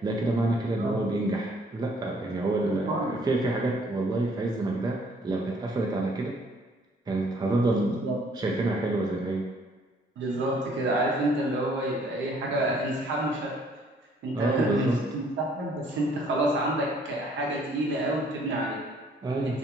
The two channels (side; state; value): both; normal; correlation 0.62